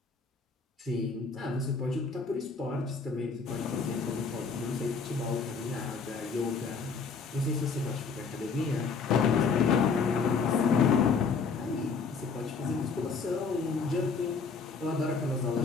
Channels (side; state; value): right; quieter; 5.1 dB